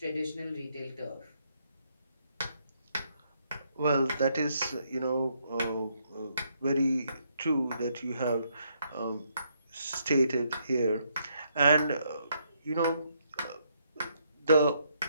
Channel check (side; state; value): both; inverted; correlation -0.74